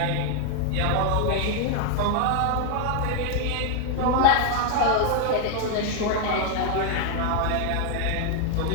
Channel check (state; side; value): different; both; correlation 0.00